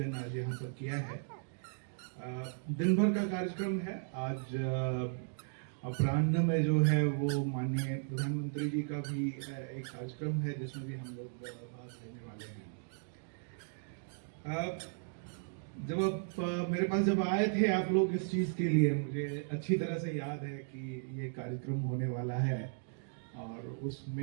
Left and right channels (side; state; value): left; silent; digital silence